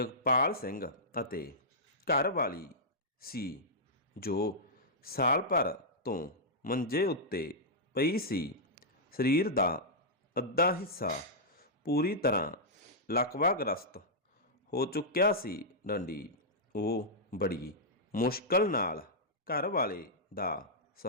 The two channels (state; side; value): normal; both; correlation -0.11